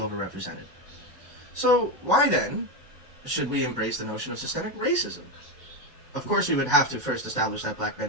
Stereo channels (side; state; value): both; normal; correlation 0.12